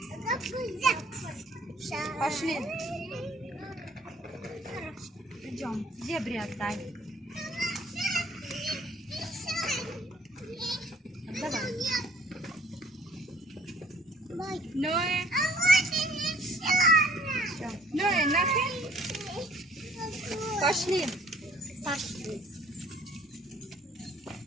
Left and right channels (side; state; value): both; normal; correlation 0.57